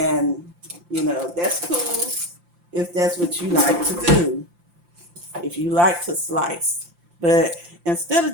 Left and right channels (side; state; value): left; late; 5.8 ms